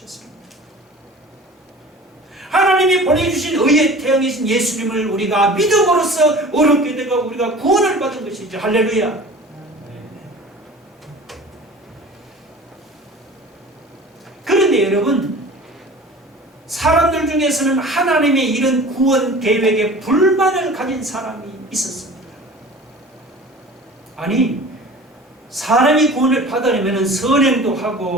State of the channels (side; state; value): both; normal; correlation 0.42